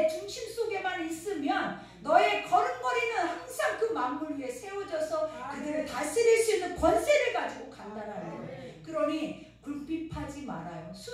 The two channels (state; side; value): identical; both; correlation 1.00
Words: 중심 속에만 있으면 너의 걸음걸이는 항상 그 만물 위에 세워져서 그들을 다스릴 수 있는 권세를 가지고 간다라는 거예요. 그러니 굴핍하지 말아요.